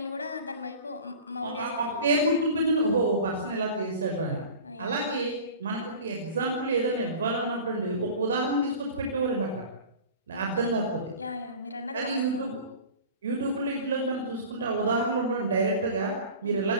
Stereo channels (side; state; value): both; inverted; correlation -0.39